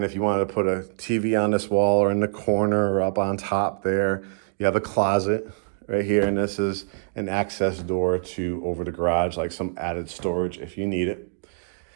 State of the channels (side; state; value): left; silent; digital silence